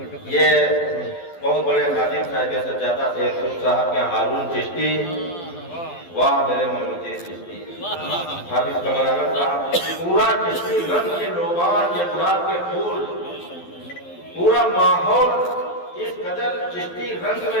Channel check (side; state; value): right; late; 12 ms